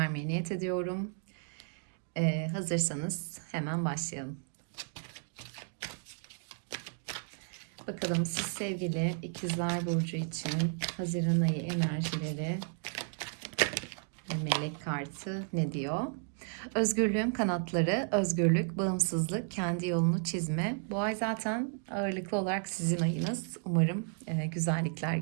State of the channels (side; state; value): left; silent; 55 dB below the other